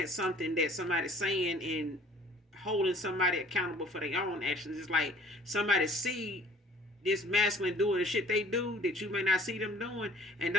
something that somebody's saying and holding somebody accountable for their own actions. It's like somebody see this masculine doing the shit they do that you may not see them doing, and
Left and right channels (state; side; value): normal; both; correlation 0.53